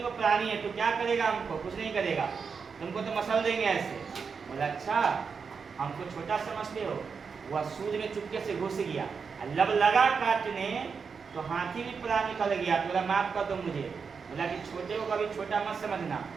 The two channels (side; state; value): left; quieter; 5.6 dB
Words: प्राणी है, तो क्या करेगा? हमको कुछ नहीं करेगा, तुमको तो मसल देंगे ऐसे। बोला अच्छा, हमको छोटा समझते हो? वह सूर्य में चुपके से घुस गया, लब लगा काटने तो हाथी भी पूरा निकल गया। तो बोला माफ कर दो मुझे। बोला कि छोटे को कभी छोटा मत समझना।